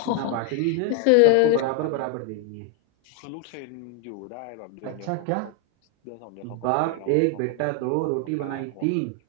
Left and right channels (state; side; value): different; both; correlation 0.01